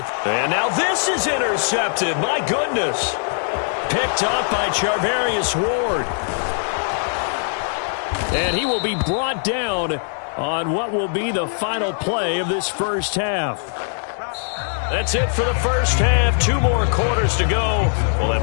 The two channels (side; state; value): right; silent; digital silence